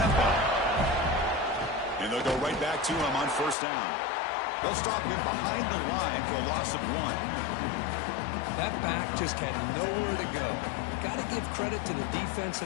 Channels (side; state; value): right; drops out; at 3.6 s